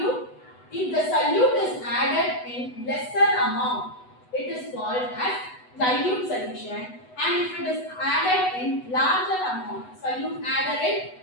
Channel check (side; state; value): right; late; 8.1 ms